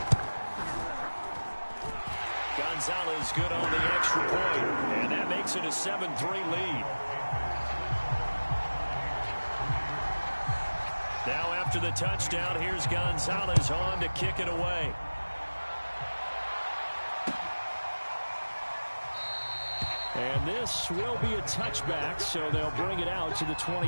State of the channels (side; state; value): both; inverted; correlation -1.00